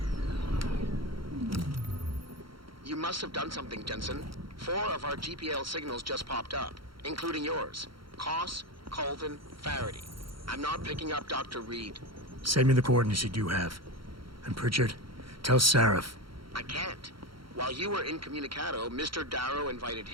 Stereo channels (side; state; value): left; late; 0.74 ms